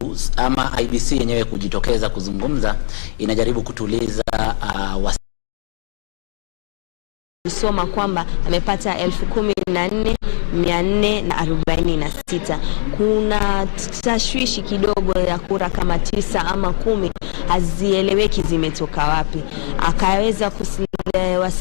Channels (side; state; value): right; silent; digital silence